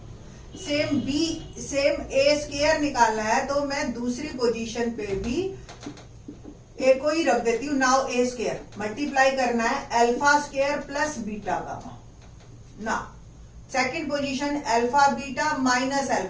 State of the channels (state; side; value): identical; both; correlation 1.00